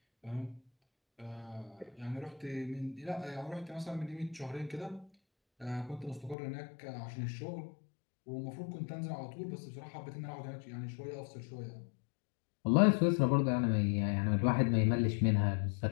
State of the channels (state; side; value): drops out; right; at 6.4 s